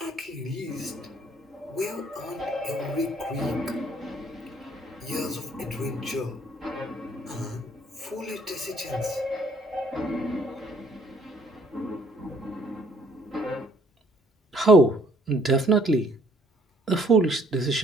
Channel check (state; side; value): normal; both; correlation 0.63